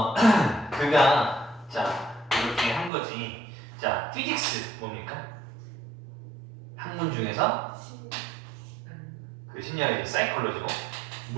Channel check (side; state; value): left; drops out; at 2.9 s